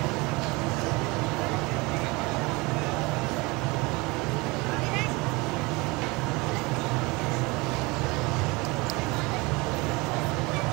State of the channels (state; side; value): quieter; left; 24.8 dB